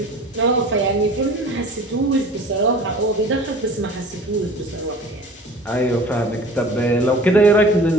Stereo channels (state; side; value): normal; both; correlation 0.43